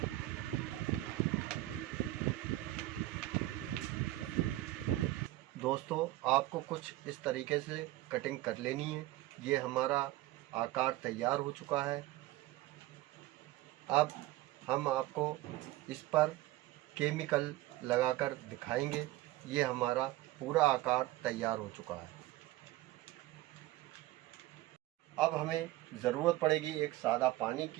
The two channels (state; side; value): quieter; left; 17.0 dB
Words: दोस्तों आपको कुछ इस तरीके से कटिंग कर लेनी है। ये हमारा आकार तैयार हो चुका है। अब हम आपको इस पर केमिकल लगाकर दिखाएंगे। ये हमारा पूरा आकार तैयार हो चुका है। अब हमें ज़रूरत पड़ेगी एक सादा पानी